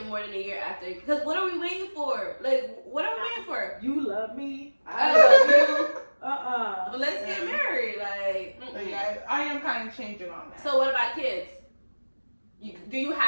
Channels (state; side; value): inverted; both; correlation -1.00